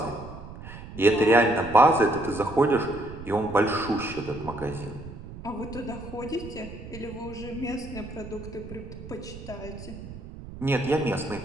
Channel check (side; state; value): right; noise; rumble, 13 dB below the sound